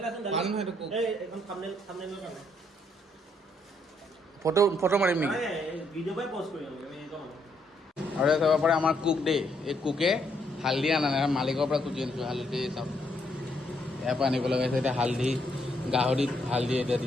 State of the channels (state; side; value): normal; both; correlation 0.73